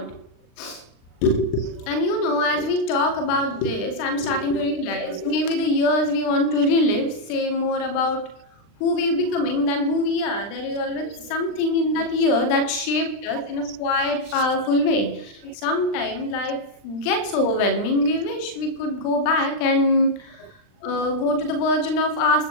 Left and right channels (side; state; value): right; late; 39 ms